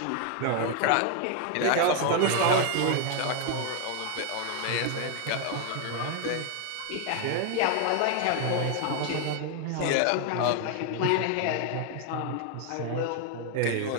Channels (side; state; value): both; different; correlation 0.00